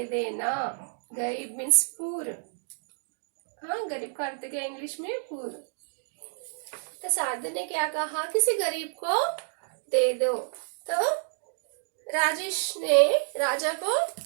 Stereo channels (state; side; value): silent; left; digital silence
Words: देना, गरीब मीन्स पूर, हाँ गरीब का अर्थ क्या इंग्लिश में, पूर। तो साधु ने क्या कहा, किसी गरीब को दे दो। तो राजेश ने राजा को